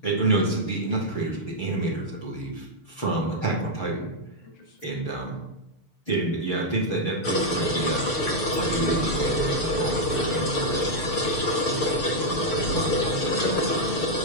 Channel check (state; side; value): late; right; 6.6 ms